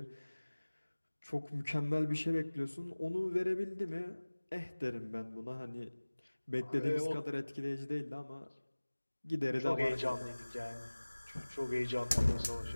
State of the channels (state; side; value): inverted; both; correlation -1.00